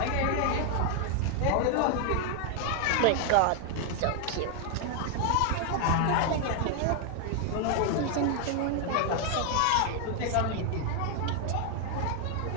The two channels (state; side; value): different; both; correlation 0.00